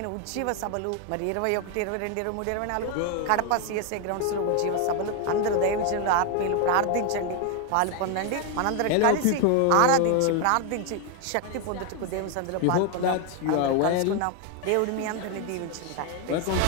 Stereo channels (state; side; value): different; both; correlation 0.01